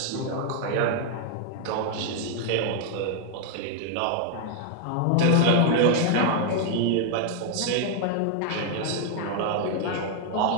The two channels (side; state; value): both; different; correlation 0.00